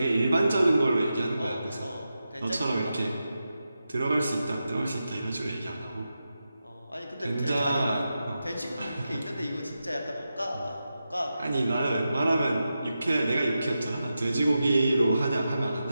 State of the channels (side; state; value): both; inverted; correlation -0.90